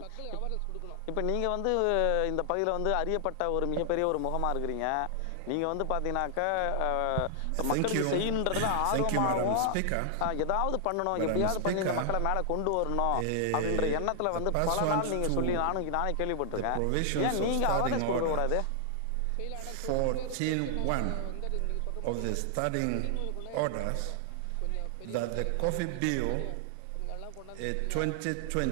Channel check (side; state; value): both; different; correlation 0.00